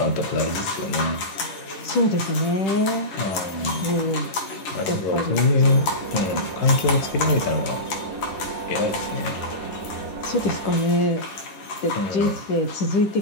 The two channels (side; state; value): right; late; 10 ms